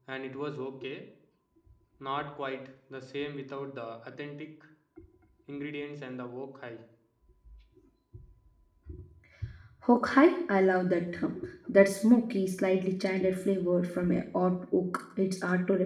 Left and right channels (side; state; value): both; identical; correlation 1.00